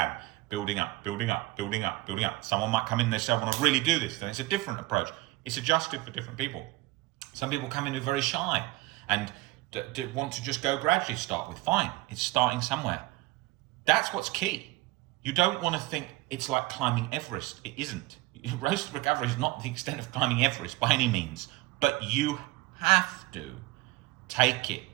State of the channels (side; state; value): left; quieter; 20.2 dB